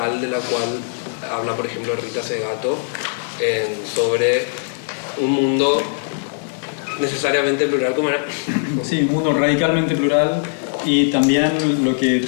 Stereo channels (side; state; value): right; silent; digital silence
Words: de la cual habla, por ejemplo, Rita Segato, sobre un mundo necesariamente plural, como era. Sí, un mundo radicalmente plural, y también lo que